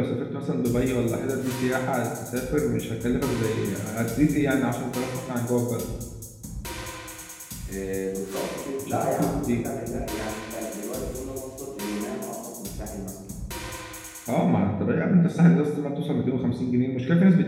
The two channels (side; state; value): both; identical; correlation 1.00